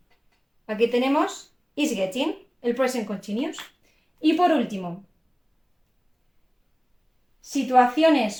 Aquí tenemos is getting, el present continuous. Y por último,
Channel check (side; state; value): both; identical; correlation 1.00